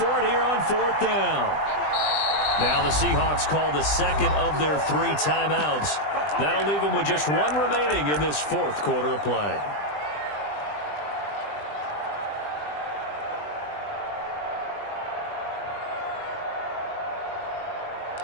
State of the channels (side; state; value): right; late; 20 ms